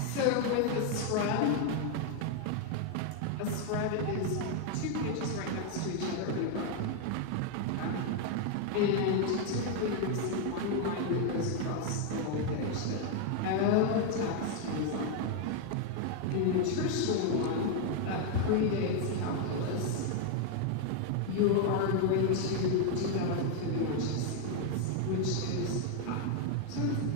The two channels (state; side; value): different; both; correlation 0.01